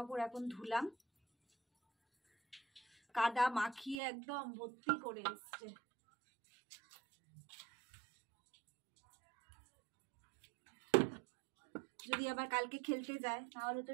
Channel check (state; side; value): drops out; left; at 4.0 s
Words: এখন ধুলাম, কাদা মাখিয়ে একদম ভর্তি করে এসছে। যদি আবার কালকে খেলতে যায় তাহলে তো